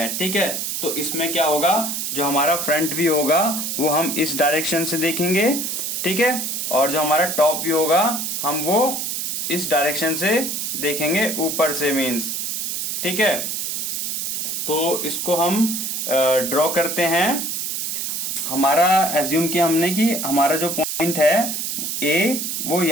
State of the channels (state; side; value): noise; right; hiss, 2 dB below the sound